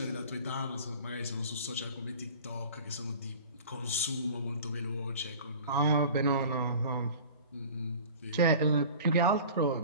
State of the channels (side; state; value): both; inverted; correlation -0.41